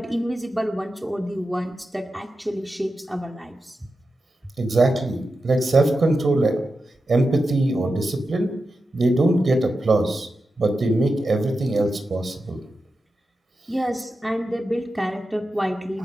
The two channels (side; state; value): both; normal; correlation 0.90